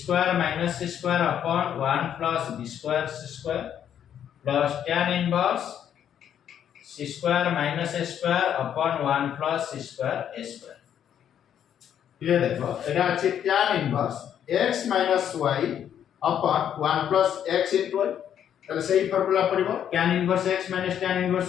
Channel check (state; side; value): quieter; right; 9.5 dB